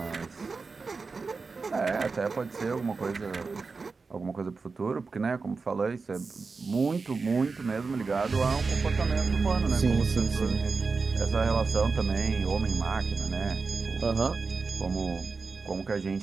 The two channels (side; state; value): left; quieter; 4.4 dB